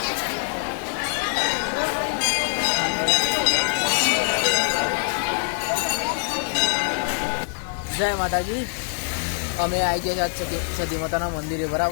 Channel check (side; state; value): right; silent; digital silence